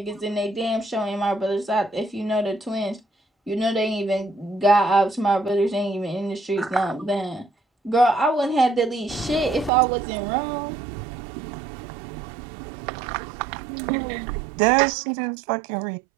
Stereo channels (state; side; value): drops out; left; at 9.7 s